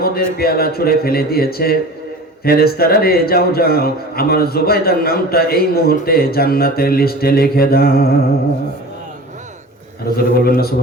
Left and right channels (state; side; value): normal; both; correlation 0.37